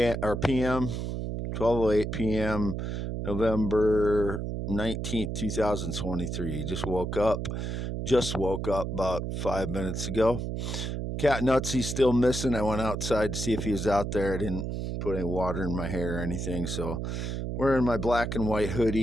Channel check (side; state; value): right; noise; hum, 3 dB below the sound